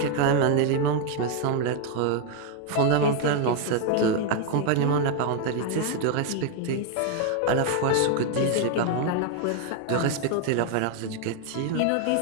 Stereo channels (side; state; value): both; different; correlation 0.01